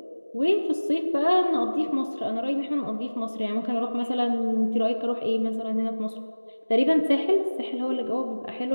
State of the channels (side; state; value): both; inverted; correlation -1.00